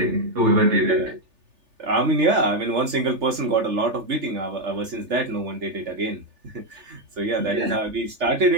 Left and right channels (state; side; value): late; left; 3.4 ms